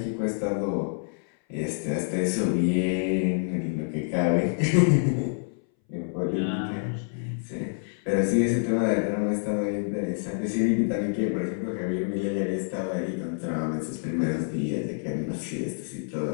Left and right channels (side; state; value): right; silent; 60 dB below the other